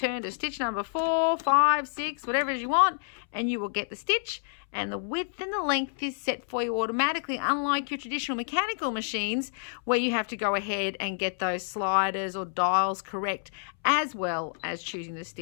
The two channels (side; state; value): right; silent; 59 dB below the other